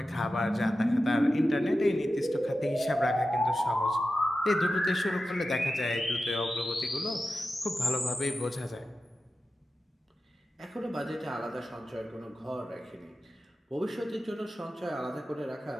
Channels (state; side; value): normal; both; correlation 0.92